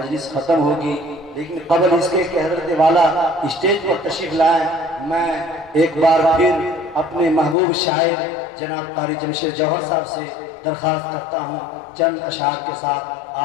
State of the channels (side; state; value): right; drops out; at 7.6 s